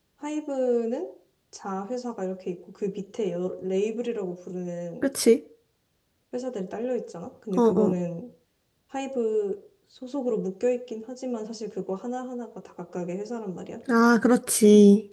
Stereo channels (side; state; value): both; identical; correlation 1.00